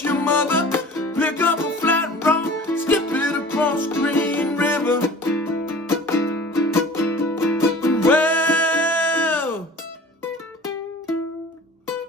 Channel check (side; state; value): both; normal; correlation 0.44